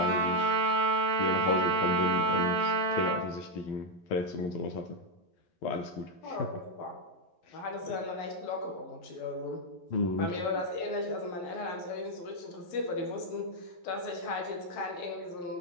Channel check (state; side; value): late; right; 11 ms